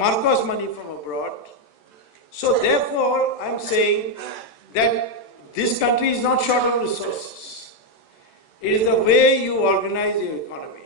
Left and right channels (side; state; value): right; late; 14 ms